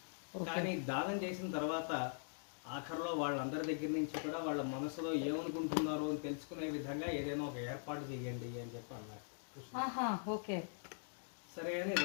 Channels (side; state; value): right; silent; digital silence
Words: కానీ దానం చేసిన తర్వాత ఆఖరిలో వాళ్ళందరి దగ్గర నుంచి కూడా వాళ్ళ మనసులో ఏమనుకుంటున్నారో అని తెలుసుకునే విధంగా ఏదైనా ఒక ఏర్పాటు చేయండి అని చెప్పి అన్నారు. ఓకే. సరే అని